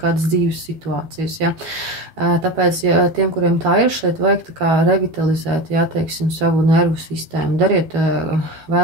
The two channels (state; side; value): late; left; 13 ms